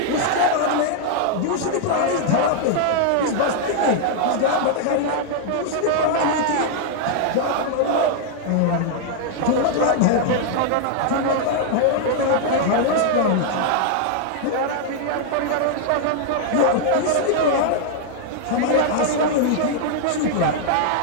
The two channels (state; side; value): different; both; correlation -0.01